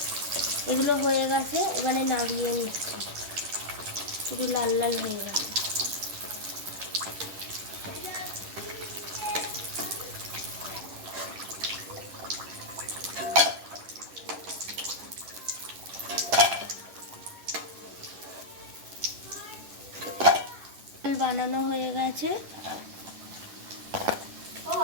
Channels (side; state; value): left; late; 10 ms